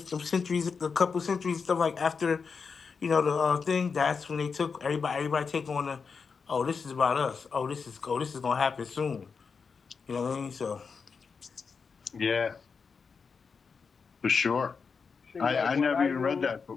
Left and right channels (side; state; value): right; quieter; 5.4 dB